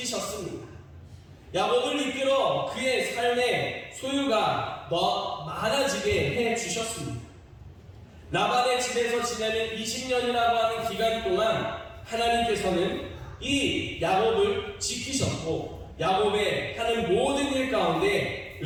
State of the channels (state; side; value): identical; both; correlation 1.00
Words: 야곱을 이끌어 그의 삶의 소유가 더 많아지게 해주셨습니다. 라반의 집에서 지내는 20년이라고 하는 기간 동안 하나님께서는 이 야곱을 지키셨고 야곱의 하는 모든 일 가운데